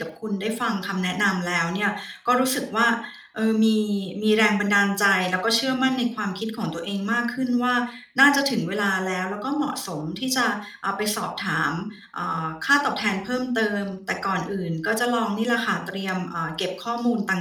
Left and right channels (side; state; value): both; identical; correlation 1.00